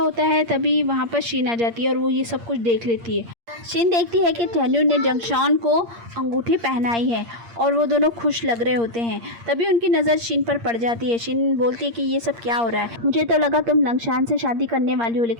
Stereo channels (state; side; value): late; left; 8.6 ms